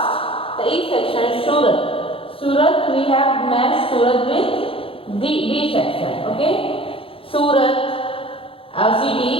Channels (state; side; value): late; right; 0.27 ms